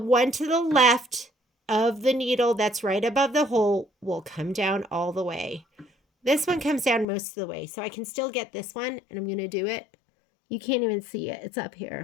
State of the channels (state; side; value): drops out; right; at 7.1 s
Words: to the left of the needle that's right above the hole will come down all the way. This one comes down most of the way, so I can still get this one, and I'm going to do it. You can't even see it. It's up